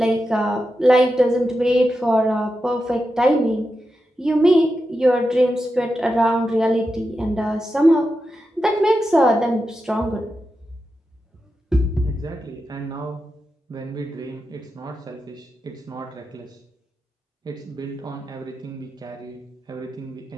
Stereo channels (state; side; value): normal; both; correlation 0.89